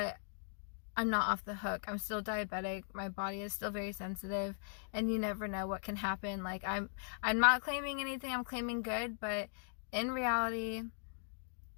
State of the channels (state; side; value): silent; right; digital silence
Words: I'm not off the hook. I'm still diabetic. My body is still very sensitive, and you never know what can happen. Like, I'm not claiming anything. I'm claiming good, but in reality,